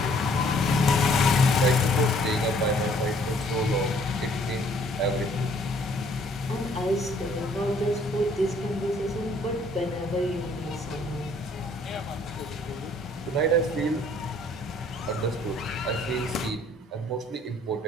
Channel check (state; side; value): normal; both; correlation 0.60